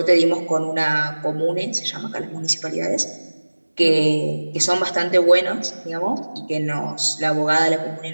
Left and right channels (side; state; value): both; inverted; correlation -1.00